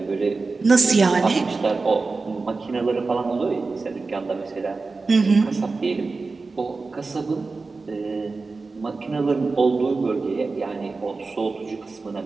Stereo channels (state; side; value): quieter; left; 3.9 dB